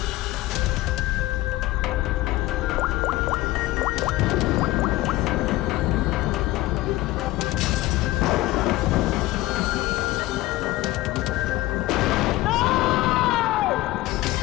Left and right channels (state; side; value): quieter; right; 17.9 dB